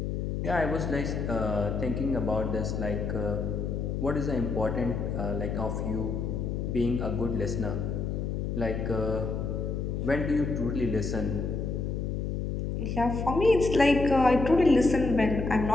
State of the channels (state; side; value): noise; left; hum, 2 dB below the sound